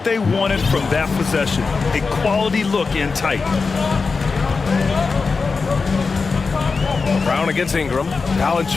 they wanted from that possession. A quality look in tight. Brown against Ingram.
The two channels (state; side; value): quieter; right; 4.5 dB